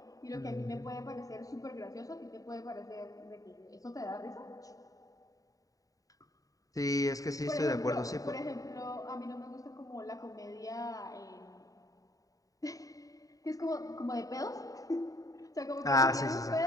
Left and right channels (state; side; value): late; right; 0.17 ms